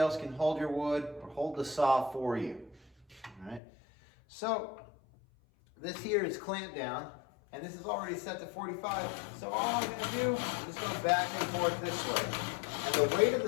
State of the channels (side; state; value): right; drops out; at 3.6 s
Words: can hold your wood or hold the saw for you. All right. So this here is clamped down, and this is already set to 45. So all I'm going to do is go back and forth this way. And the weight of